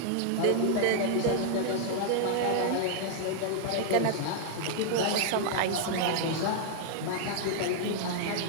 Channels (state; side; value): different; both; correlation -0.01